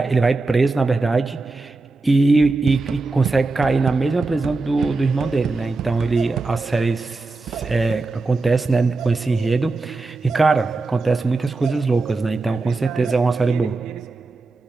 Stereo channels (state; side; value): quieter; left; 3.6 dB